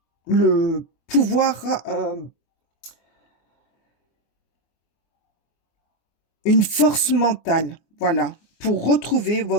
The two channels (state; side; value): late; right; 24 ms